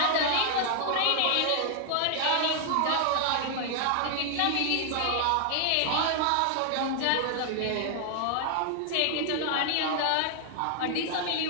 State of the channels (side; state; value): both; different; correlation -0.01